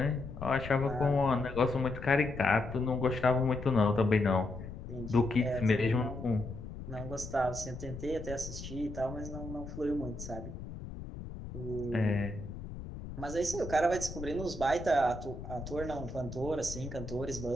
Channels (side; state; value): left; noise; rumble, 10 dB below the sound